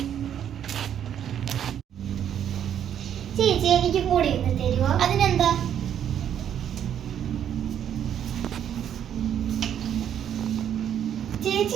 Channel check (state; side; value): quieter; left; 9.5 dB